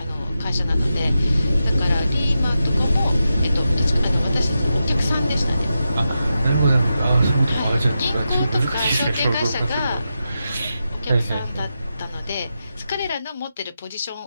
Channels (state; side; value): inverted; both; correlation -0.89